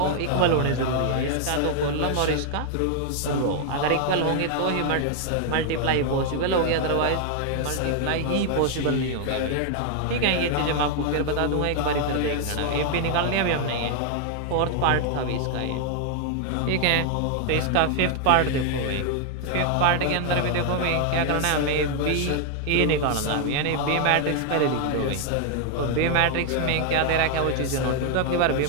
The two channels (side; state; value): both; different; correlation 0.00